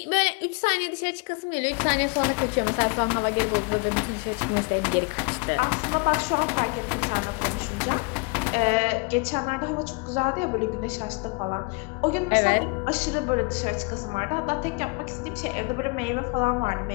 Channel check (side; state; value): right; quieter; 30.6 dB